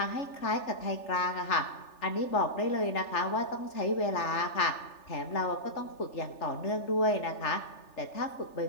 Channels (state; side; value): late; right; 3.4 ms